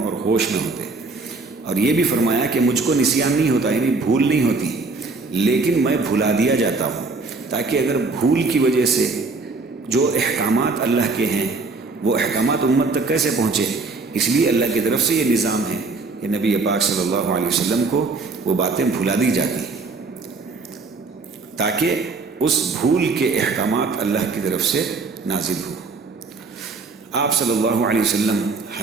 ہوش میں ہوتے، اور یہ بھی فرمایا کہ مجھ کو نسیان نہیں ہوتا، یعنی بھول نہیں ہوتی، لیکن میں بھلا دیا جاتا ہوں تاکہ اگر بھول کی وجہ سے جو احکامات اللہ کے ہیں وہ احکامات امت تک کیسے پہنچے، اس لیے اللہ کی طرف سے یہ نظام ہے کہ نبی پاک صلی اللہ علیہ وسلم کو وہ باتیں بھلا دی جاتی تاکہ اس بھول کے احکامات اللہ کی طرف سے نازل ہو۔ آپ صلی اللہ علیہ وسلم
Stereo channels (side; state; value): left; quieter; 3.9 dB